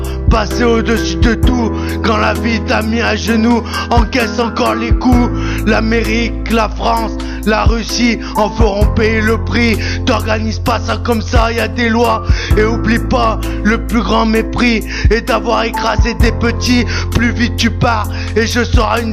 passer au-dessus de tout. Quand la vie t'a mis à genoux, encaisse encore les coups. L'Amérique, la France, la Russie en feront payer le prix. T'organises pas ça comme ça, y a des lois. Et oublie pas, le plus grand mépris est d'avoir écrasé des petits. Plus vite tu pars et je serai une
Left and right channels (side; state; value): both; identical; correlation 1.00